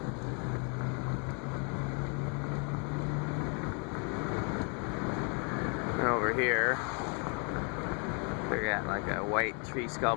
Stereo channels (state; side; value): quieter; right; 36.2 dB